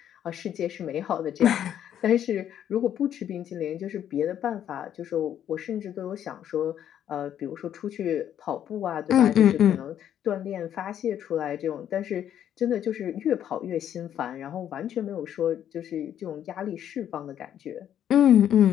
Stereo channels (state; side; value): quieter; right; 10.2 dB